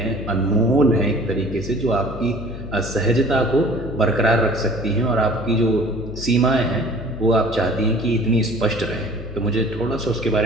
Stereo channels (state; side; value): noise; left; hum, 11 dB below the sound